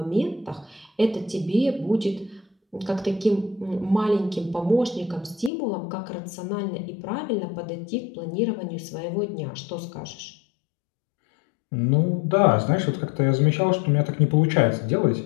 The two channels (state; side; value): drops out; right; at 5.5 s